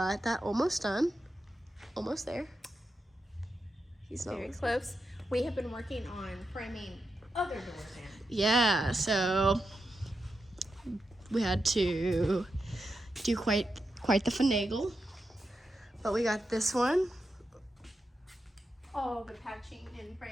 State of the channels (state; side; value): normal; both; correlation 0.88